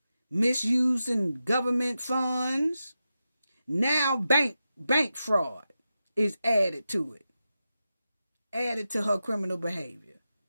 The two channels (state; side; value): inverted; both; correlation -0.90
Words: Misusing government funds. Now bank fraud is added to it. Added to her criminal behavior.